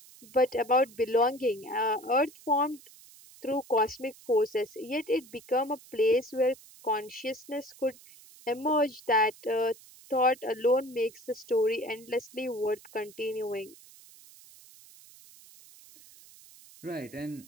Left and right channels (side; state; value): right; noise; hiss, 22 dB below the sound